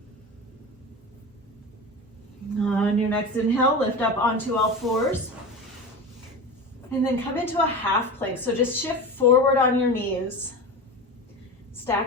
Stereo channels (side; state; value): both; normal; correlation 0.27